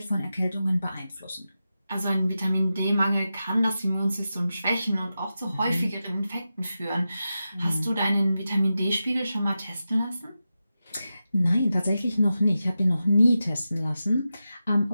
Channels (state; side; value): inverted; both; correlation -0.91